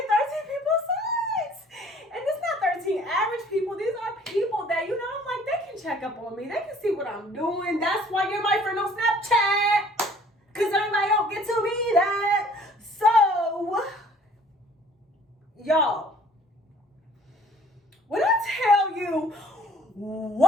13 people saw it. And it's not 13 average people. These are people that, you know, I'm like, they can check up on me. They can see what I'm doing. That's why you're my friend on Snapchat. Because everybody don't get to be that. So, y'all, when I tell you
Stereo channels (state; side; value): normal; both; correlation 0.54